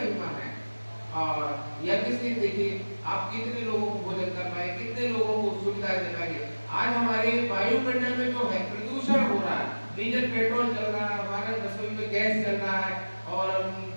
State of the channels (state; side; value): inverted; both; correlation -1.00